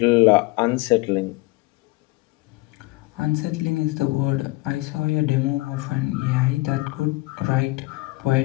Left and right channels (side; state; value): right; quieter; 22.1 dB